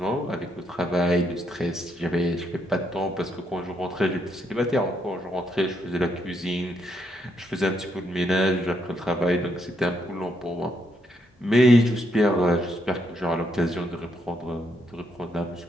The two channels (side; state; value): both; normal; correlation 0.76